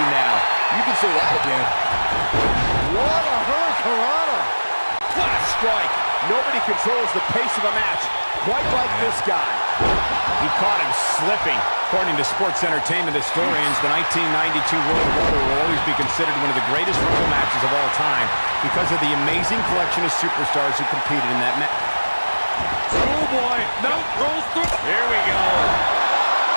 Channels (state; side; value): inverted; both; correlation -1.00